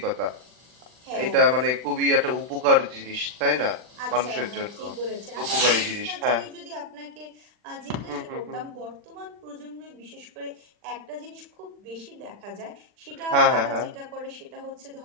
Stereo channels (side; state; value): left; late; 40 ms